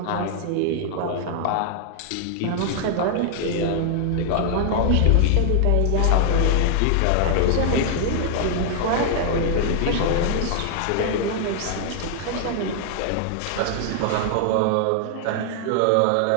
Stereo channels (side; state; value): both; different; correlation 0.00